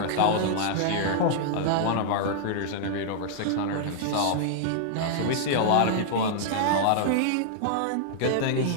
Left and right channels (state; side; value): different; both; correlation -0.01